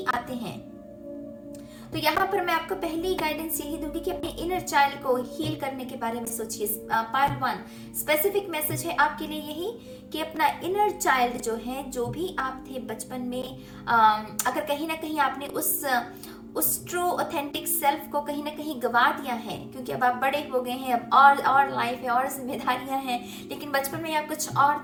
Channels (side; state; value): both; identical; correlation 1.00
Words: आते हैं। तो यहाँ पर मैं आपको पहली गाइडेंस यही दूंगी कि अपने इनर चाइल्ड को हील करने के बारे में सोचिए। पार्ट 1 स्पेसिफिक मैसेज है आपके लिए यही कि अपना इनर चाइल्ड जो है, जो भी आप थे बचपन में, अगर कहीं ना कहीं आपने उस ट्रू ऑथेंटिक सेल्फ को कहीं ना कहीं गवा दिया है, क्योंकि अब आप बड़े हो गए हैं, अब और लाइफ है और जिम्मेदारियां हैं, लेकिन बचपन में आप कुछ